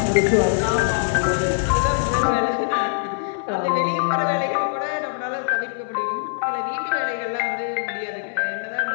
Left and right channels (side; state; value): right; silent; 55 dB below the other